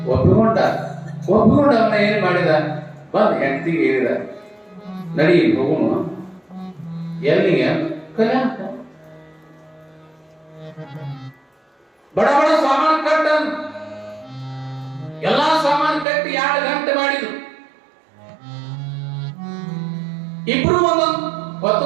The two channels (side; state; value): left; drops out; at 16.1 s